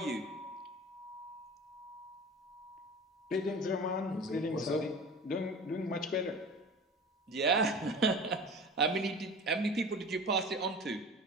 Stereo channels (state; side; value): normal; both; correlation 0.37